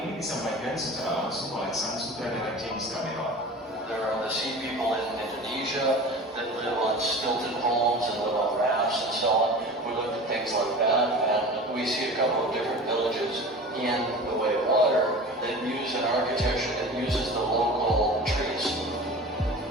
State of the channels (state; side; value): normal; both; correlation 0.36